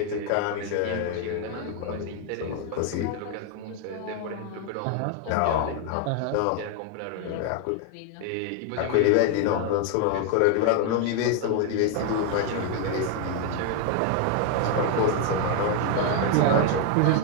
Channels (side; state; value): both; different; correlation 0.01